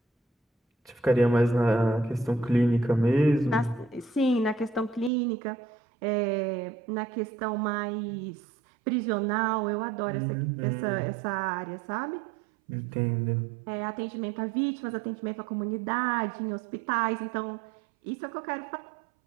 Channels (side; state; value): left; drops out; at 5.1 s